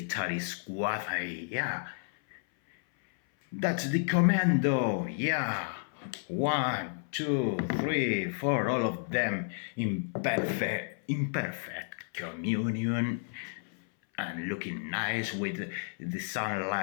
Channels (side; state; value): right; silent; 57 dB below the other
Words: squad. Yeah, that's the commando. Yeah, 1, 2, 3, 4, all of them in imperfect communion and looking nice with the